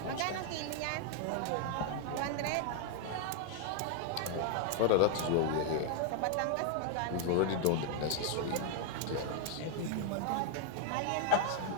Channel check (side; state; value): both; different; correlation 0.00